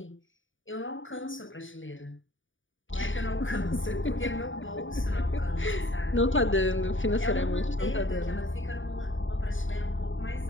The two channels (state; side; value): late; right; 0.57 ms